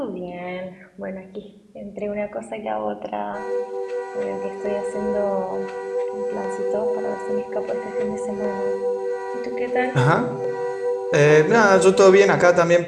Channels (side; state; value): both; identical; correlation 1.00